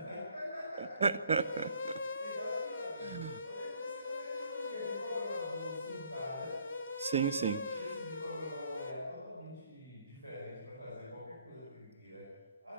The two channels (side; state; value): both; inverted; correlation -0.64